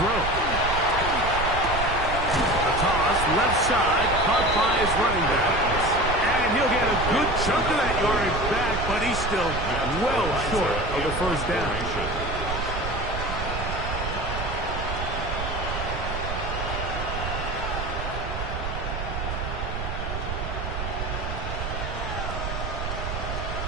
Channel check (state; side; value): noise; right; rumble, 4 dB below the sound